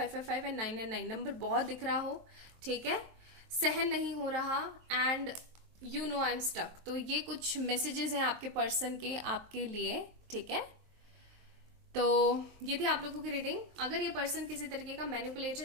एंड 999 नंबर बहुत दिख रहा हो, ठीक है, सहन नहीं हो रहा, and you know I am stuck. तो ये कुछ मैसेजेस हैं आपके पर्सन के आपके लिए, ठीक है। तो ये थी आप लोगों की रीडिंग। अगर ये पर्सन किसी तरीके का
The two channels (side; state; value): left; late; 23 ms